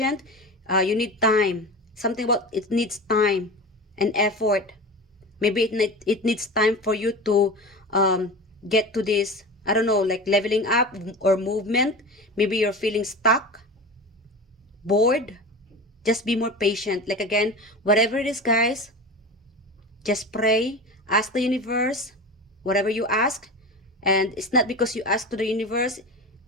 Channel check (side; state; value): both; normal; correlation 0.30